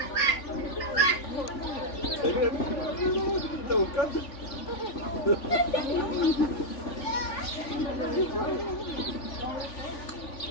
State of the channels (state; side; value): late; right; 3.4 ms